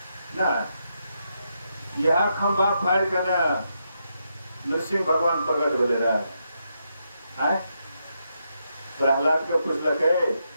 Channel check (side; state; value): both; inverted; correlation -0.82